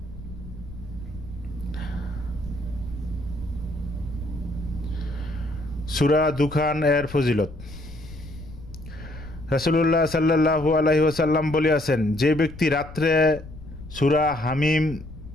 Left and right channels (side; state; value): left; noise; rumble, 14 dB below the sound